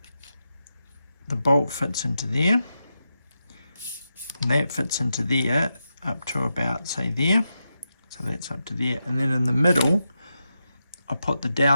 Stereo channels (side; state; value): both; inverted; correlation -0.87